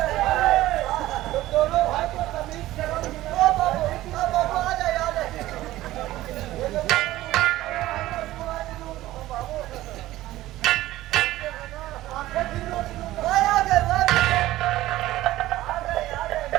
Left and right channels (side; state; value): left; quieter; 15.8 dB